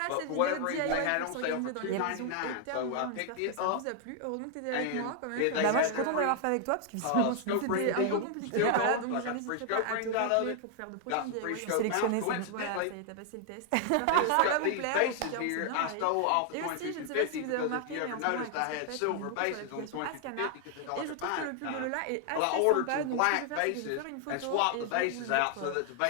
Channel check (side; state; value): both; different; correlation 0.00